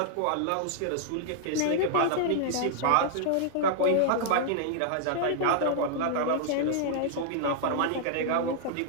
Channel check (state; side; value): different; both; correlation -0.01